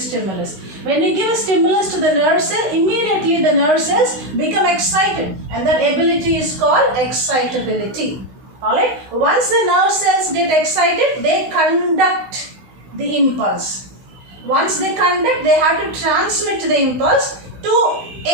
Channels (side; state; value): left; late; 16 ms